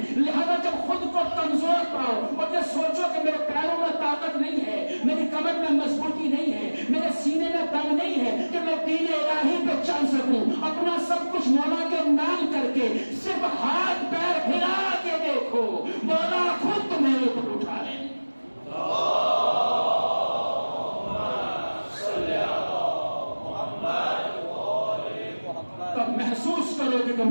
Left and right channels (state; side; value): inverted; both; correlation -1.00